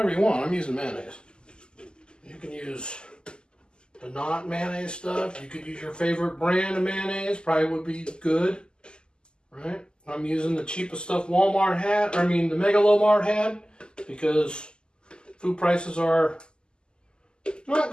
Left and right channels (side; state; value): right; late; 0.048 ms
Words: you want. I'm using mayonnaise. You can use the not mayonnaise stuff. You could use your favorite brand of mayonnaise, probably would be good, right? I'm using the cheapest stuff Walmart had, the Megalomart had, because food prices are not